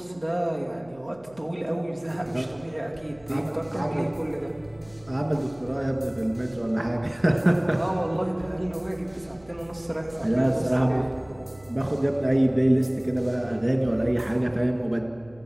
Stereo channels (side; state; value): right; noise; hum, 26 dB below the sound